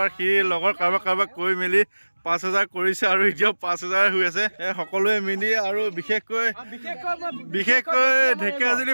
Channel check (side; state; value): both; inverted; correlation -1.00